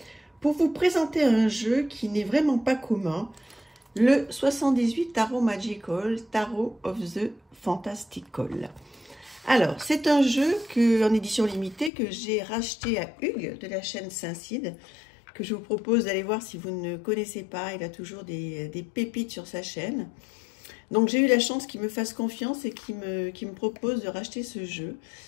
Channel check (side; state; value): right; drops out; at 11.9 s